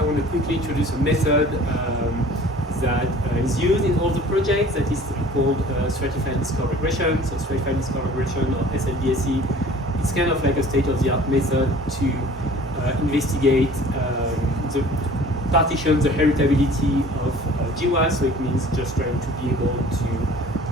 want to quickly introduce a method that is used in all the projects that is called stratified discovery regression. So stratified discovery regression, or SLDSE, it's kind of like a state-of-the-art method to investigate the partition the heritability of GWAS, so it means just trying to be able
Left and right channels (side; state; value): both; normal; correlation 0.48